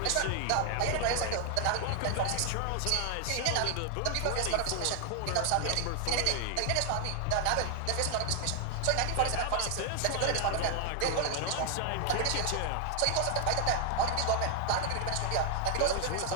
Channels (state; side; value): different; both; correlation 0.00